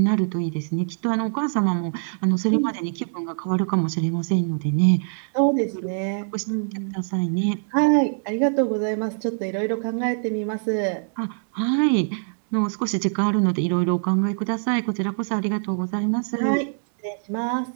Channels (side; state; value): left; silent; digital silence